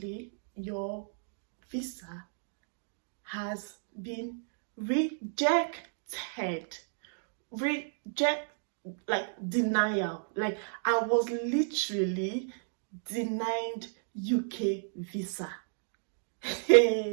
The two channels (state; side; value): silent; left; digital silence